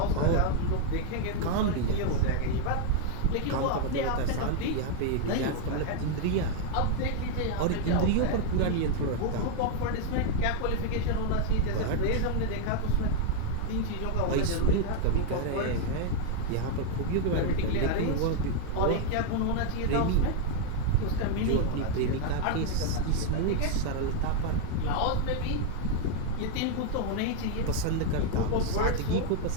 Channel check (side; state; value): both; different; correlation 0.00